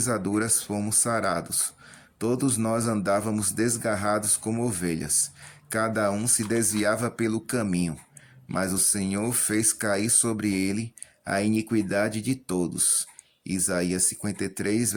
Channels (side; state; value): both; identical; correlation 1.00